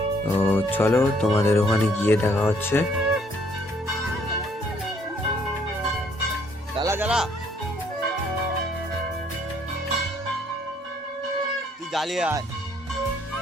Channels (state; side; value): normal; both; correlation 0.65